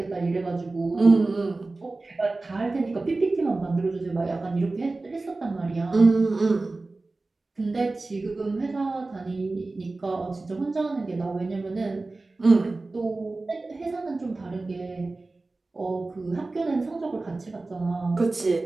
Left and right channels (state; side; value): quieter; left; 3.3 dB